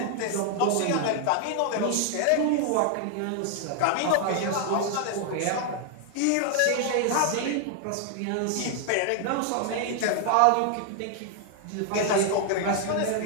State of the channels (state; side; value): different; both; correlation 0.00